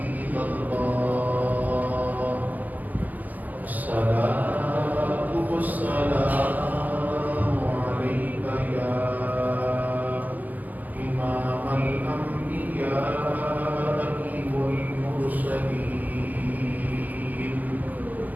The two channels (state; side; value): late; left; 0.081 ms